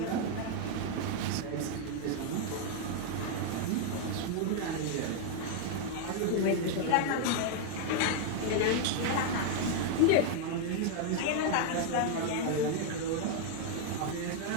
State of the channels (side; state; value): both; different; correlation 0.00